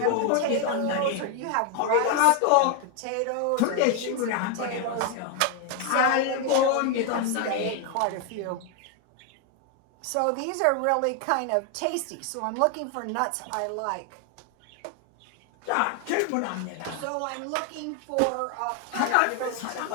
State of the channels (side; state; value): both; different; correlation 0.01